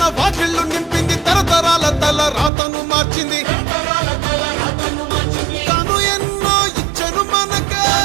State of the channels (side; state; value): left; drops out; at 2.5 s